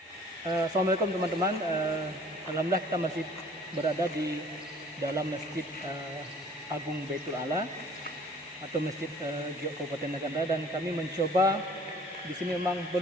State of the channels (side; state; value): both; normal; correlation 0.52